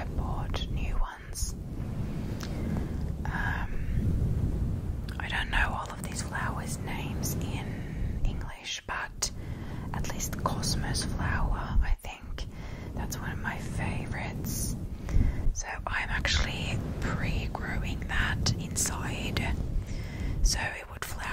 bought new ones. I don't know all of these flowers' names in English, but at least Cosmos flower, I think that's one of my favorites. So I'm actually pre-growing that inside, so it would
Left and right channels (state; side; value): identical; both; correlation 1.00